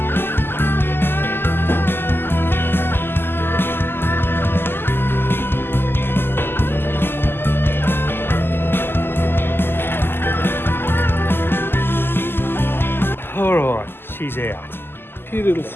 Alright, she's out. A few little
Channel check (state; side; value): late; right; 0.11 ms